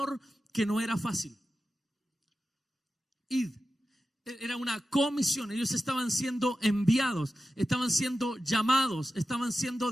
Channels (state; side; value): normal; both; correlation 0.93